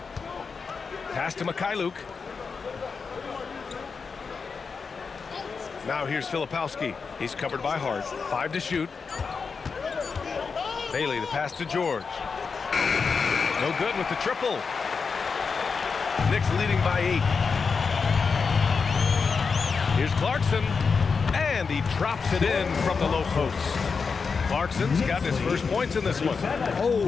Pass to Mikhailuk. Now here's Filipowski. He's covered by Hart. 5 to shoot. Bailey, the pass to George. No good with the triple. Knicks leading by 8. Here's Clarkson. And he drops it in from the low post. Clarkson's got his first points in this one.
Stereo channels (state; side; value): quieter; right; 5.2 dB